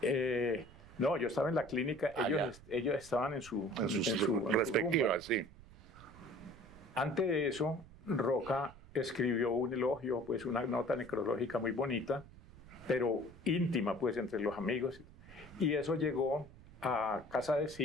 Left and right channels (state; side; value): noise; right; rumble, 20 dB below the sound